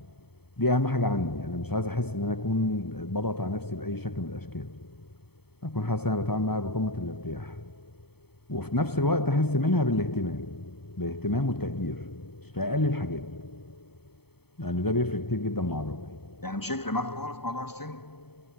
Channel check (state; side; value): late; right; 0.97 ms